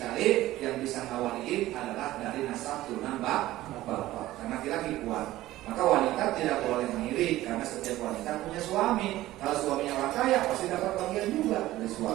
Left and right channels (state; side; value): quieter; left; 15.9 dB